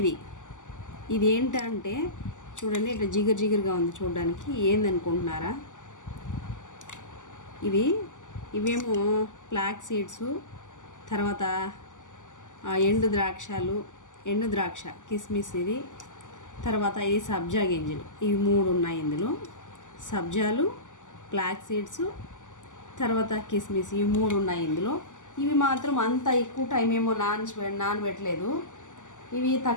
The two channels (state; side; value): late; right; 0.86 ms